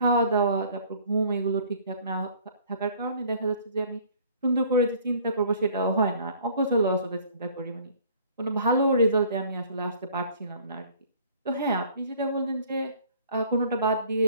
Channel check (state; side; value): inverted; both; correlation -0.54